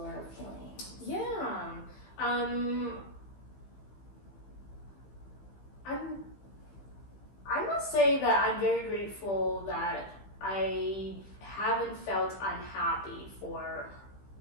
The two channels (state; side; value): late; right; 15 ms